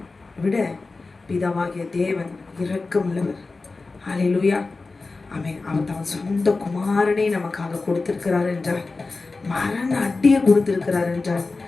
விட பிதாவாகிய தேவன் இரக்கமுள்ளவர். ஹல்லேலூயா. அவன் அவர் தன் சொந்த குமாரனை நமக்காக கொடுத்திருக்கிறார் என்றால், மரண அடியை கொடுத்திருக்கிறார் என்றால்,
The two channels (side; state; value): right; quieter; 3.8 dB